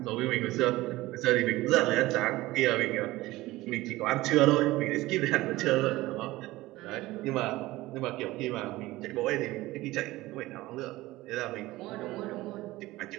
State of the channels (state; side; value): quieter; left; 18.3 dB